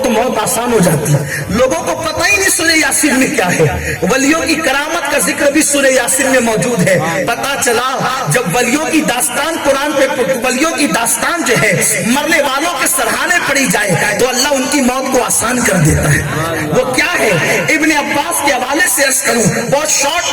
تو موت آسان ہو جاتی ہے، لوگوں کو پتہ ہی نہیں سورہ یاسین میں کیا ہے۔ ولیوں کی کرامت کا ذکر بھی سورہ یاسین میں موجود ہے۔ پتہ چلا جب ولیوں کی داستان قرآن پہ، ولیوں کی داستان جو ہے مرنے والوں کے سرہانے پڑی جائے تو اللہ ان کی موت کو آسان کر دیتا ہے۔ وہ کیا ہے؟ ابن عباس کے حوالے سے عرض کروں، بہت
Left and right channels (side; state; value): both; identical; correlation 1.00